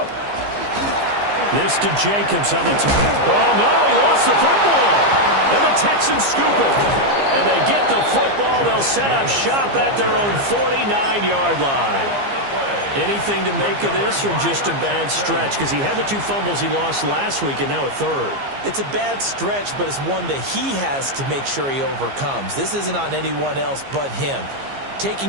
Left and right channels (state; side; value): late; left; 15 ms